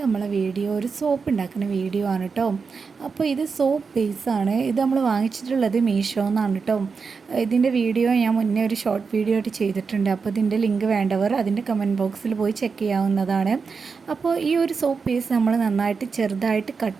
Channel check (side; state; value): left; quieter; 5.2 dB